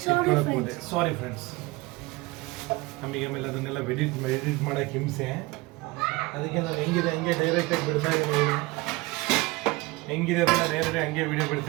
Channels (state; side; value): quieter; left; 22.2 dB